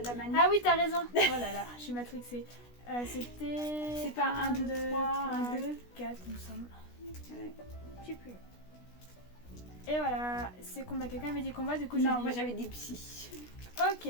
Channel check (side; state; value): right; late; 16 ms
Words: manette. Ah oui, t'as raison. Oh là là, je suis matrixée. C'était. C'est pas 1, 2, 3, 2, 4, il me semble. Ouais. Je sais plus. Et voilà, c'est combat. Quelqu'un avait dit combat, du coup non, moi j'avais des psy. Ok,